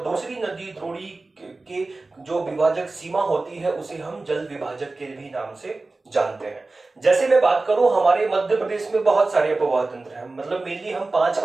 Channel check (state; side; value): quieter; left; 3.4 dB